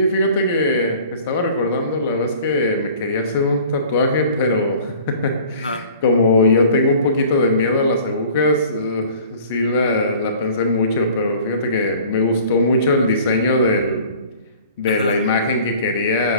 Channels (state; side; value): inverted; both; correlation -0.48